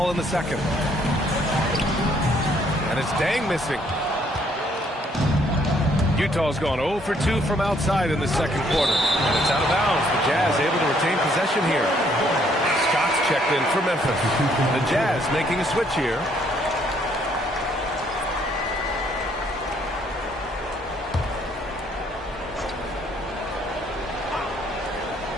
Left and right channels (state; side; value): normal; both; correlation 0.67